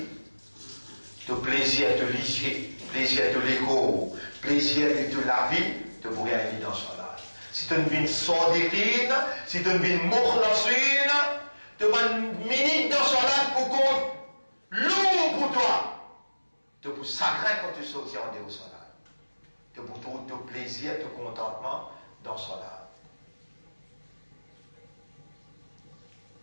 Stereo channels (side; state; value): both; inverted; correlation -1.00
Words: de plaisir de l'issue, plaisir de l'écho, plaisir de la vie, tu pourrais aller dans Salat. Si tu vis sadiqin, si tu vis mukhlasin, tu vas une minute dans Salat pour compte lourd pour toi. Tu pour sacré quand tu sortis en dehors Salat. Tu pour ton plaisir, ton contentement dans Salat.